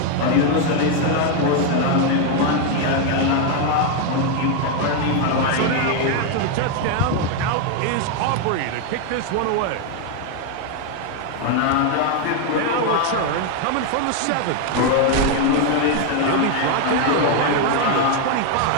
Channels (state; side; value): different; both; correlation 0.01